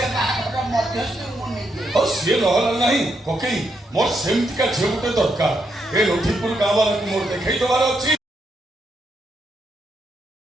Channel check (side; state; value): both; normal; correlation 0.80